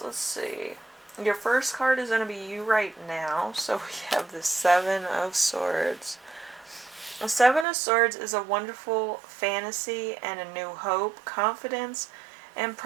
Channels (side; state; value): left; drops out; at 7.7 s